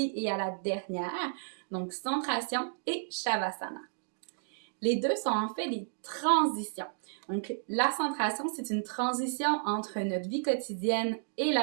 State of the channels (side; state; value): left; silent; digital silence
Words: et à la dernière, donc centration et Shavasana. Les deux sont en fait des transitions. Donc la centration, c'est une transition entre notre vie quotidienne et